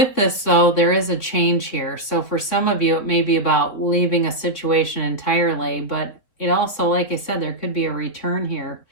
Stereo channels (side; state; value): right; late; 3.7 ms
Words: this, though, there is a change here. So for some of you, it may be about leaving a situation entirely, but it also, like I said, there could be a return here.